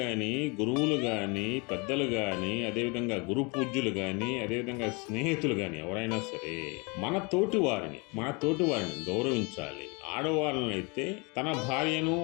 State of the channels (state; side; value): quieter; right; 29.8 dB